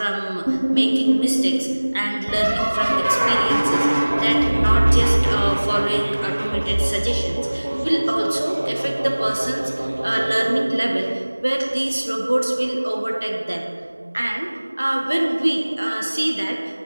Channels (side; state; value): both; inverted; correlation -1.00